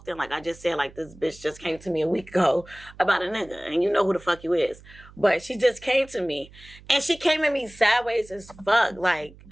Like I just said, like this bitch just came to me a week ago about a nigga. And you know who the fuck you is. But she just came to me. And she came at me sideways as fuck. Like,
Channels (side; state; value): right; noise; hum, 22 dB below the sound